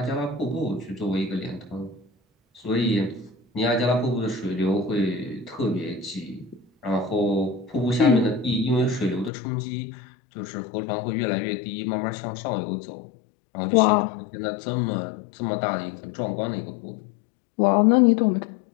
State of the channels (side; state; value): right; drops out; at 9.3 s